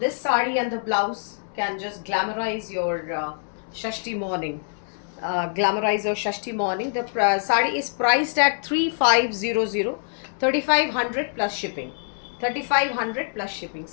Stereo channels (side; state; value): right; silent; 62 dB below the other